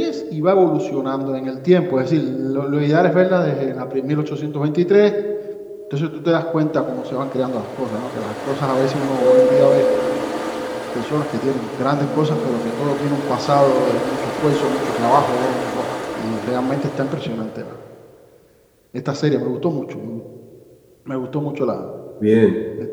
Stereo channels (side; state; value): both; identical; correlation 1.00